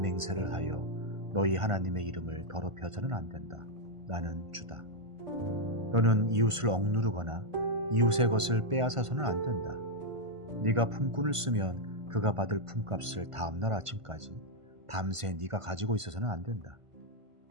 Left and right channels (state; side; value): late; left; 1.5 ms